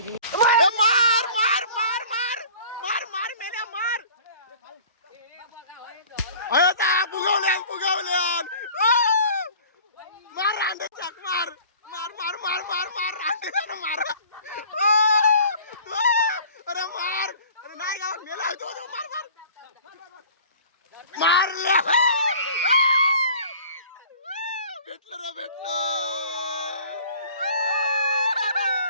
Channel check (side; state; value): both; inverted; correlation -0.47